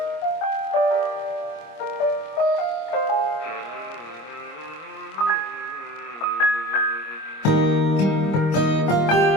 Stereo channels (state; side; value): late; right; 25 ms